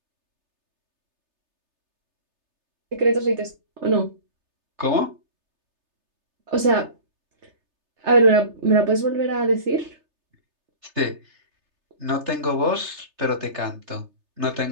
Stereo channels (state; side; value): late; left; 3.3 ms